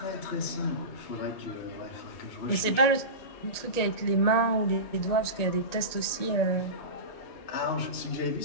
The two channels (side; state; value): right; late; 1.9 ms